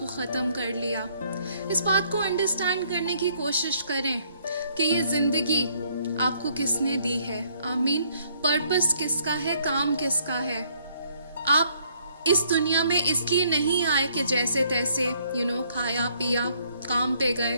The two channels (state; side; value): inverted; both; correlation -0.67